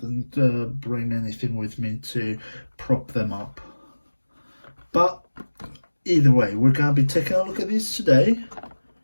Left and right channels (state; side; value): inverted; both; correlation -1.00